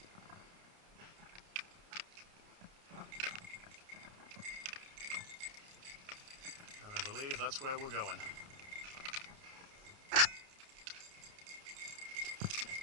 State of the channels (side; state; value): left; late; 29 ms